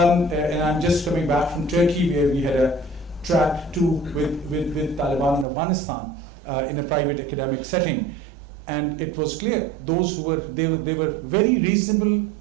I'm just coming back from Turkey where we had a track 2 with Taliban in Afghanistan in a private academic setting. And it was clear, those who were, they were very reasonable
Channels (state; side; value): drops out; left; at 5.5 s